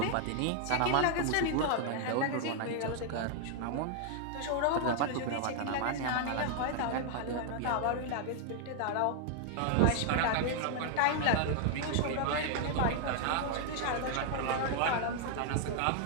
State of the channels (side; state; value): both; different; correlation 0.00